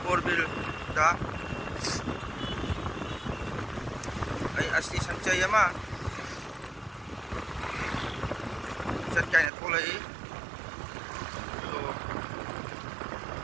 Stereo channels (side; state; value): left; drops out; at 9.5 s